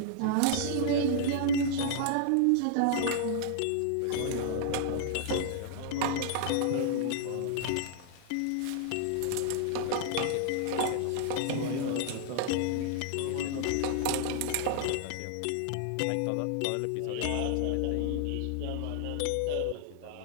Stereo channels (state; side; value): different; both; correlation -0.01